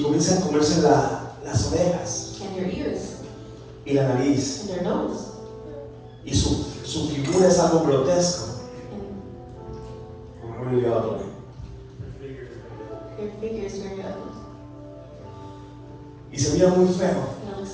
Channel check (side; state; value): both; identical; correlation 1.00